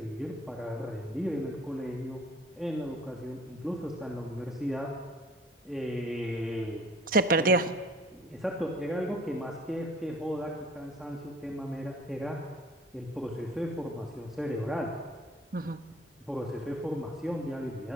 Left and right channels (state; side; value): normal; both; correlation 0.49